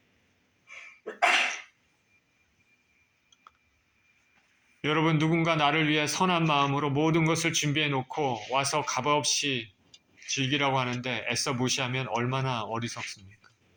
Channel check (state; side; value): identical; both; correlation 1.00